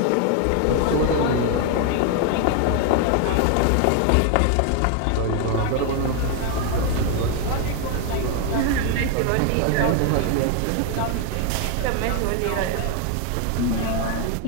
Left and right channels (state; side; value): different; both; correlation 0.01